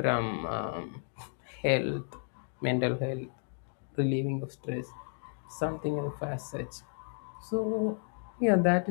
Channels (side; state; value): right; silent; 56 dB below the other